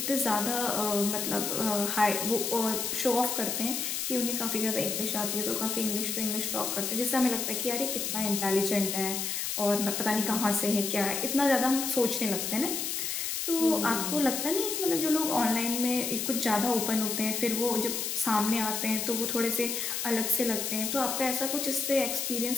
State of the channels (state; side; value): noise; left; hiss, 2 dB below the sound